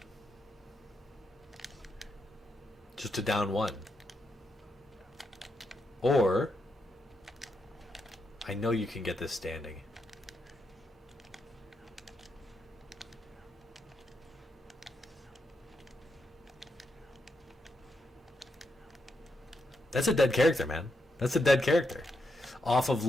Just to down one. Or, I know you can get this standing. That's a dead character, man. That's a dead character. Off of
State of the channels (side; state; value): both; normal; correlation 0.83